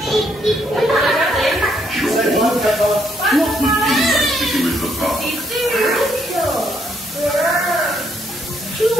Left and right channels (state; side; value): normal; both; correlation 0.72